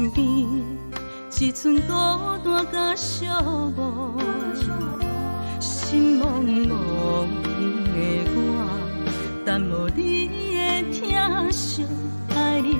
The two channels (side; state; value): both; inverted; correlation -1.00